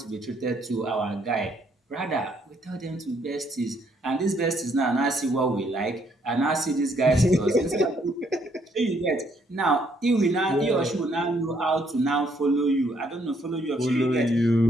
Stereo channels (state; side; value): normal; both; correlation 0.69